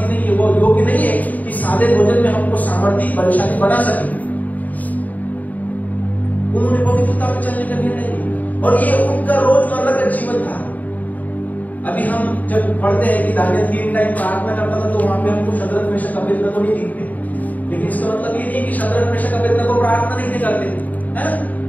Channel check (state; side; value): late; right; 0.077 ms